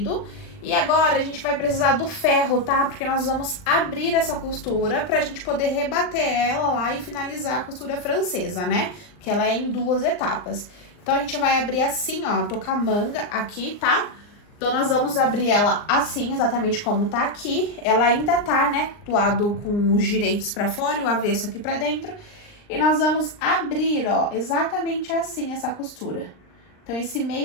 E agora a gente vai precisar do ferro, tá? Porque nós vamos abrir essa costura pra gente poder rebater ela lá e finalizar a costura francesa, né? Que ela é em 2 etapas. Então, a gente vai abrir assim, ó, tô com a manga aqui, tá? Então, nós vamos abrir ela assim, exatamente como tá aqui. Ela ainda tá, né, do lado com os direitos pra fora e o avesso aqui pra dentro. E nós vamos abrir, ó, exatamente assim essa costura. Então, esse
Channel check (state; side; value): late; right; 39 ms